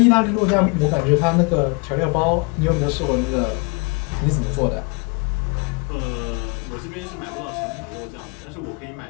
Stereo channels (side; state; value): right; quieter; 31.5 dB